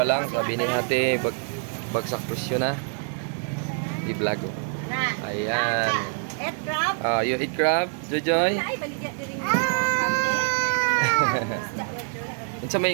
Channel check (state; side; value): silent; left; 56 dB below the other